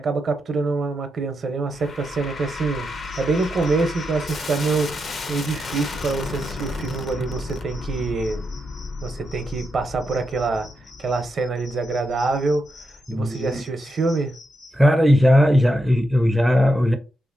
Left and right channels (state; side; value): normal; both; correlation 0.85